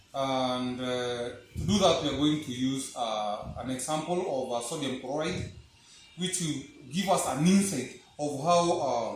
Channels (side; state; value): both; identical; correlation 1.00